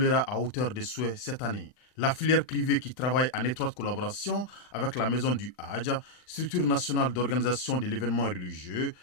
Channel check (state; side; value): late; right; 39 ms